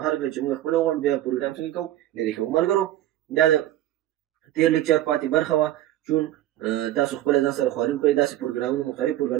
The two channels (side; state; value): left; quieter; 13.7 dB